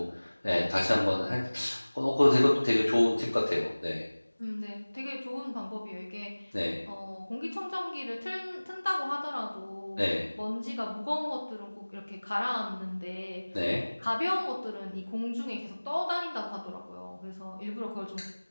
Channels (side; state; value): both; inverted; correlation -1.00